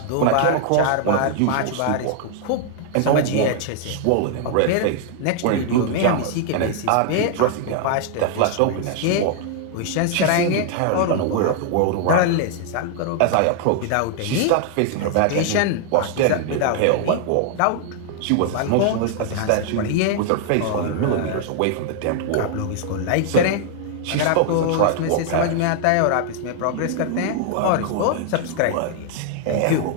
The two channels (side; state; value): both; different; correlation 0.00